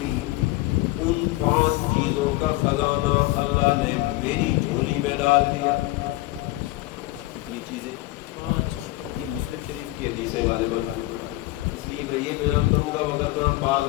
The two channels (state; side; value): quieter; right; 18.9 dB